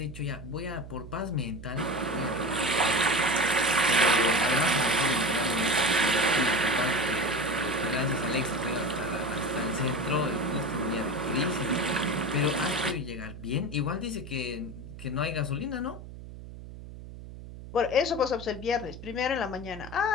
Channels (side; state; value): right; noise; hum, 13 dB below the sound